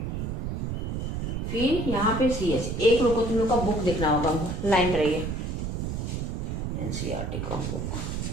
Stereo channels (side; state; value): right; noise; rumble, 3 dB below the sound